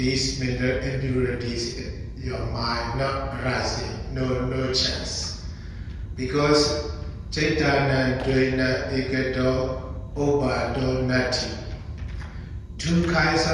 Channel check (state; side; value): identical; both; correlation 1.00